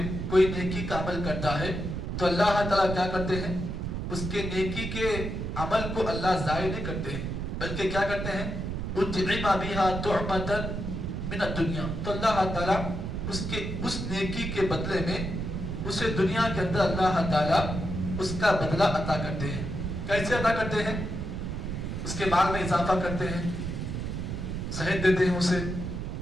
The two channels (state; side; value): noise; right; rumble, 4 dB below the sound